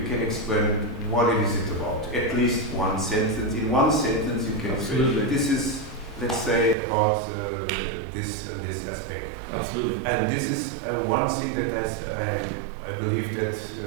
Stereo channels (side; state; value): left; drops out; at 6.8 s